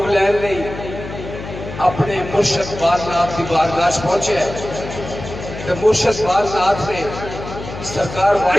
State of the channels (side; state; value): left; noise; hum, 10 dB below the sound